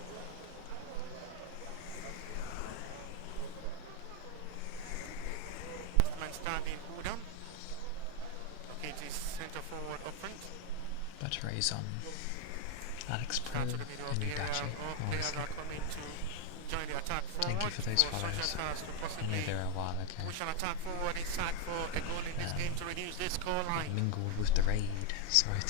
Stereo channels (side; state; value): both; different; correlation 0.01